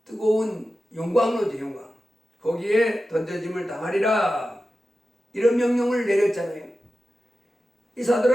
뜨거운 용광로죠, 용광. 거기에 던져짐을 당하리라. 이런 명령을 내렸잖아요. 이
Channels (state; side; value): normal; both; correlation 0.93